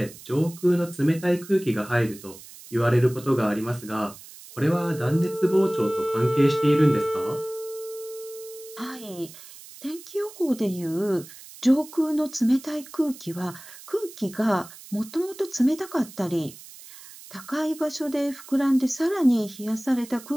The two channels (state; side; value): noise; right; hiss, 18 dB below the sound